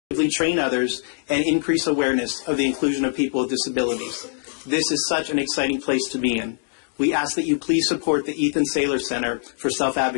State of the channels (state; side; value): silent; right; digital silence